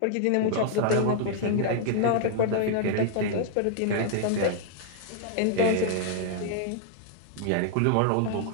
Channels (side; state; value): both; different; correlation -0.01